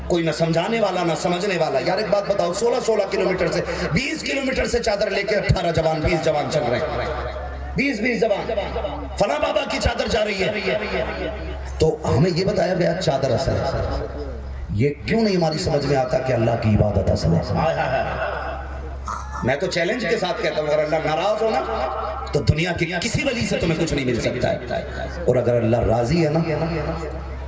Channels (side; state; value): both; identical; correlation 1.00